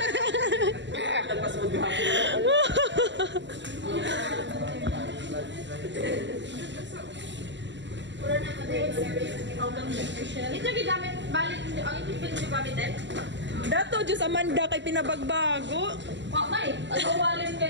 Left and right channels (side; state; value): left; late; 0.53 ms